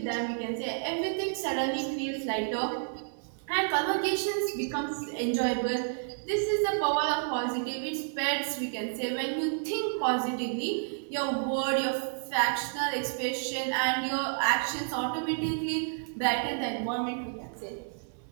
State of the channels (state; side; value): silent; left; 58 dB below the other